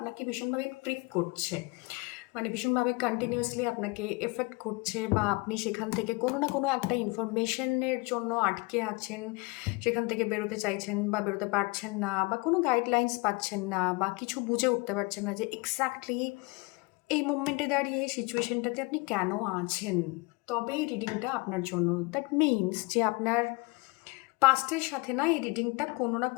ভীষণভাবে প্রিক করছে, মানে ভীষণভাবে কন্টিনিউয়াসলি আপনাকে এফেক্ট করছে, বা আপনি সেখান থেকে কোনো না কোনো একটা ইনফরমেশনের জন্য আটকে আছেন, সেখান থেকে বেরোতে চাইছেন বা বেরোতে পারছেন না, বা কোনো গাইডলাইন্স পাচ্ছেন না, বা কিছু বুঝে উঠতে পারছেন না যে এক্স্যাক্টলি এই মোমেন্টে দাঁড়িয়ে সিচুয়েশনটাতে আপনি কেন আছেন, তবে এই রিডিংটা আপনার জন্য। দ্যাট মিনস যে আপনার পাস্টের সাথে না এই রিডিংটা কোনো না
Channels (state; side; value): quieter; right; 26.0 dB